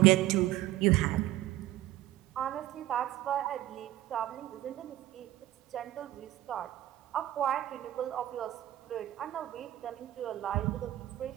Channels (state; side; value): quieter; left; 14.8 dB